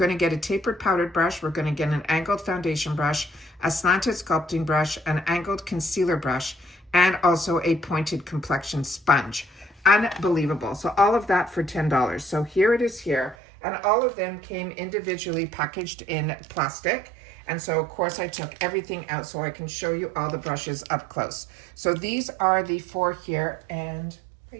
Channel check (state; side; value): drops out; left; at 13.4 s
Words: to get a tapered powdered brush, we're going to get an angled foundation brush, a slanted sculpting brush, an angled concealer brush, and also a pointed complexion sponge. Unbelievable. So all of that for $10. So here it is here, and all of them came individually packaged in plastic. And so of course I took everything out so I can show you all the brushes up close. So these are the 4 here, and I